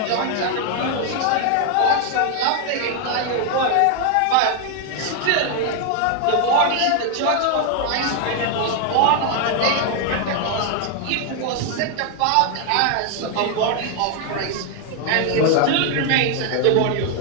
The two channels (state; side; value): different; both; correlation 0.00